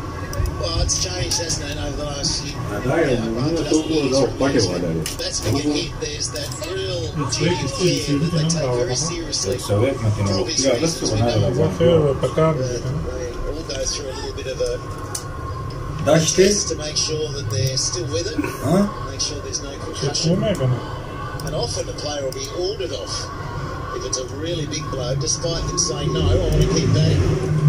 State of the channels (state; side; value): identical; both; correlation 1.00